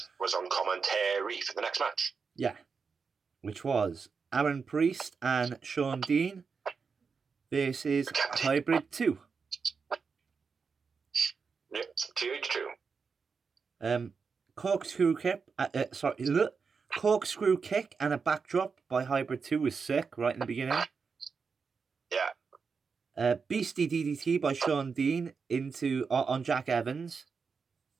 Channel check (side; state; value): left; quieter; 5.4 dB